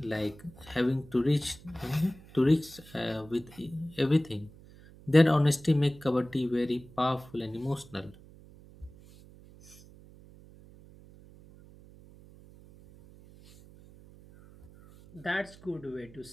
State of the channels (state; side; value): noise; right; hum, 22 dB below the sound